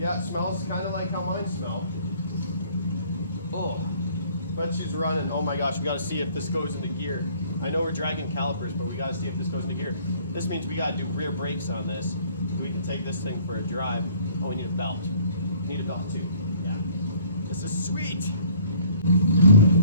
it smells kind of like how mine smell. Oh, but she's running. Oh my gosh, we got to see if this goes into gear. I know we're dragging calipers, but we got to see if this goes into gear. This means we got to do rear brakes on this so we can take this thing for a drive. Oh, we need a belt. We need a belt too. Yeah, this is sweet.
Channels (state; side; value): inverted; both; correlation -0.57